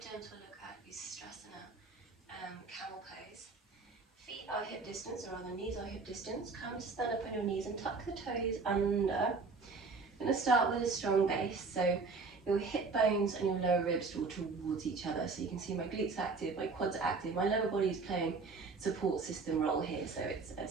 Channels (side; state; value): left; quieter; 4.3 dB